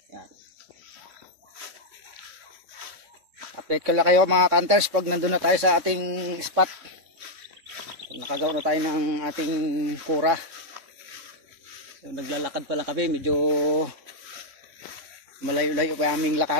Yan. Update ko lang kayo mga hunters pag nandun na tayo sa ating spot. Pag nakagawa na tayo ng ating kura. So, naglalakad pa lang kami. Medyo malayo-layo pa aming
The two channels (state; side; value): late; left; 3.6 ms